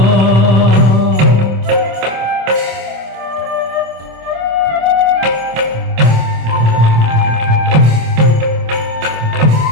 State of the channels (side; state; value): left; late; 26 ms